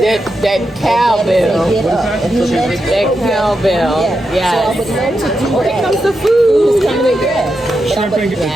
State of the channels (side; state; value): both; normal; correlation 0.86